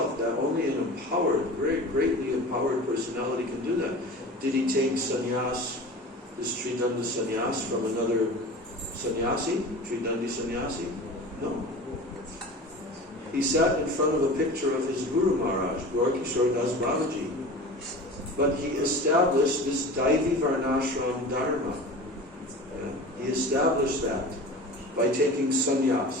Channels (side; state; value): both; normal; correlation 0.36